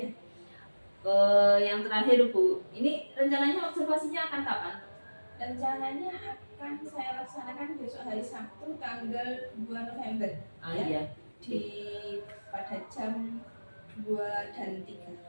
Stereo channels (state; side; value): inverted; both; correlation -1.00